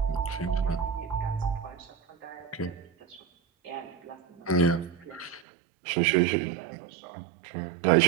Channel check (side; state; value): left; drops out; at 5.5 s